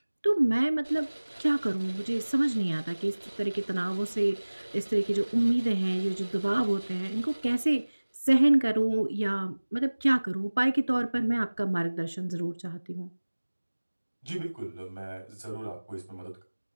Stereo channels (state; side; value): inverted; both; correlation -1.00